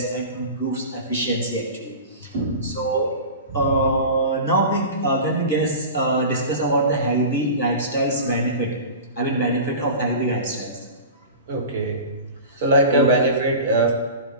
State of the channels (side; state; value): both; inverted; correlation -0.33